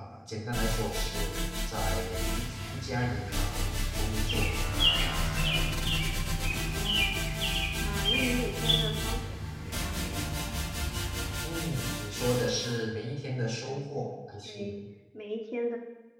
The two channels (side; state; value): both; identical; correlation 1.00